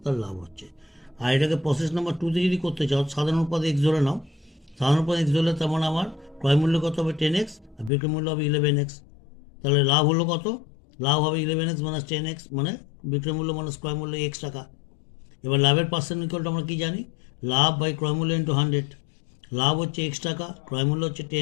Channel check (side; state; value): right; drops out; at 7.9 s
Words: তার লাভ হচ্ছে। আর এটাকে প্রসেস নাম্বার 2তে যদি করতে চাও, সাধারণ অনুপাত এক্স ধরে নাও। সাধারণ অনুপাত এক্স ধরলে তেমন আমার ক্রয় মূল্য কত হবে? 10x, আর বিক্রয় মূল্য হবে 11x। তাহলে লাভ হলো কত? লাভ হবে 11x মাইনাস 10x, মানে বিক্রয় মূল্য মাইনাস ক্রয় মূল্য x টাকা। এবার লাভের পার্সেন্ট ইকুয়ালটা আমরা কি জানি? লাভ বাই ক্রয় মূল্য ইন্টু 100। লাভ হচ্ছে x টাকা, ক্রয় মূল্য হচ্ছে